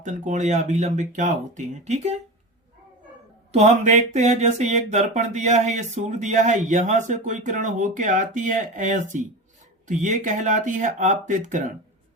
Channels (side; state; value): both; normal; correlation 0.26